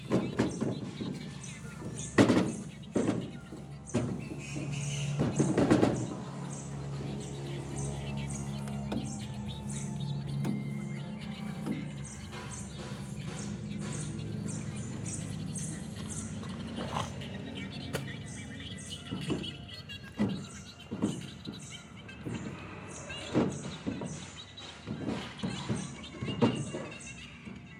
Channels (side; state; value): both; identical; correlation 1.00